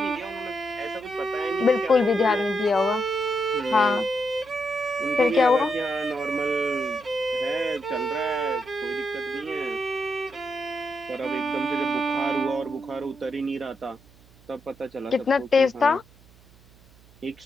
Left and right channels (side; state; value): right; noise; hum, 26 dB below the sound